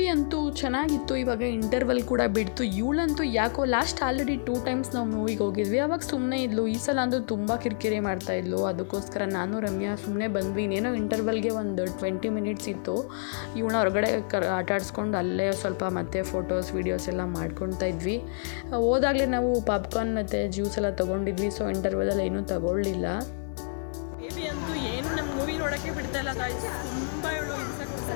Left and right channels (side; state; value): right; silent; digital silence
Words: ಅಂತೂ ಚೆನ್ನಾಗಿತ್ತು. ಇವಾಗ ಇಂಟರ್ವಲ್ ಕೂಡ ಬಿಡ್ತು. ಇವಳಂತೂ ಯಾಕೋ ಆಲ್ರೆಡಿ 2 times ನಾವು ಮೂವಿಗೆ ಹೋಗಿದ್ವಿ, ಅವಾಗ ಸುಮ್ಮನೆ ಇದ್ಲು. ಈ ಸಲ ಅಂತೂ ತುಂಬ ಕಿರಿಕಿರಿ ಮಾಡ್ತಾಯಿದ್ಲು. ಅದಕ್ಕೋಸ್ಕರ ನಾನು ರಮ್ಯಾ ಸುಮ್ಮನೆ ಬಂದ್ವಿ. ಇನ್ನೇನೋ ಇಂಟರ್ವಲ್ಗೆ ಒಂದು 20 minutes ಇತ್ತು. ಇವಳನ್ನ ಹೊರಗಡೆ ಆಟಾಡಿಸ್ಕೊಂಡು ಅಲ್ಲೇ ಸ್ವಲ್ಪ ಮತ್ತೆ ಫೋಟೋಸ್ ವೀಡಿಯೋಸ್ ಎಲ್ಲ ಮಾಡ್ಕೊತಾ ಇದ್ವಿ. ಹೋದಾಗಲೇ ನಾವು ಪಾಪ್ಕಾರ್ನ್ ಮತ್ತು ಜ್ಯೂಸ್ ಎಲ್ಲ ತೊಗೊಂಡಿದ್ವಿ. ಸೊ ಇಂಟರ್ವಲಲ್ಲಿ ಏನೂ ತಗೊಳ್ಳಿಲ್ಲ. ಬೇಬಿ ಅಂತೂ ಏನು ನಮ್ಮ ಮೂವಿ ನೋಡೋಕ್ಕೆ ಬಿಡ್ತಾ ಇಲ್ಲ ಗಾಯ್ಸ್, ತುಂಬ ಇವಳು ಹಿಂಸೆ ಕೊಡ್ತಾ